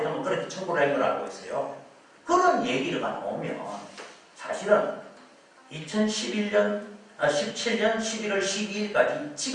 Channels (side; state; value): both; identical; correlation 1.00